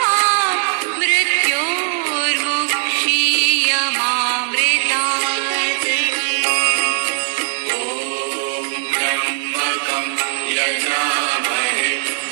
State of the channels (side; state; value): left; silent; digital silence